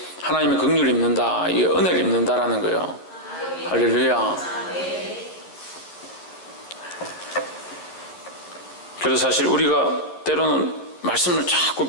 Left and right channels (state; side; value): late; right; 11 ms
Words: 하나님의 긍휼을 입는다, 이 은혜를 입는다라는 거예요. 할렐루야. 그래서 사실 우리가 때로는 말씀을 자꾸